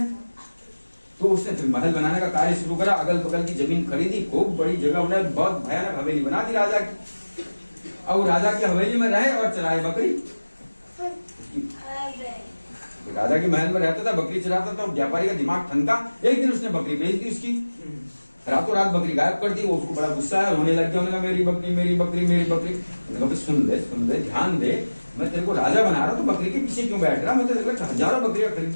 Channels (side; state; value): both; inverted; correlation -1.00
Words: तो उसने फिर महल बनाने का कार्य शुरू करा, अगल बगल की जमीन खरीदी, खूब बड़ी जगह उन्होंने बहुत भयानक हवेली बना दी राजा की। अब राजा की हवेली में रहे और चराए बकरी। राजा के महल में रहता था, बकरी चराता था, व्यापारी का दिमाग ठनका। एक दिन उसने बकरी बेच दी, उसकी रातों रात बकरी गायब कर दी। वो उसको बड़ा गुस्सा है, रोने लग गया। उन्होंने कहा मेरी बकरी मेरी बकरी मेरी बकरी। सुन ले ध्यान दे, मैं तेरे को राजा बना रहा, तो बकरी के पीछे क्यों बैठ रहा, मैं तेरे को हजारों बकरियां खरीद